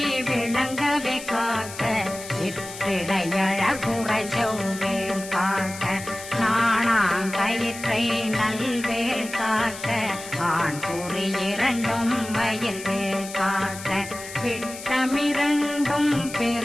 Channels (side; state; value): left; noise; hiss, 12 dB below the sound